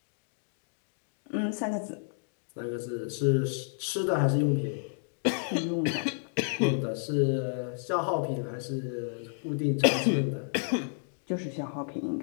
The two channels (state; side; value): silent; right; digital silence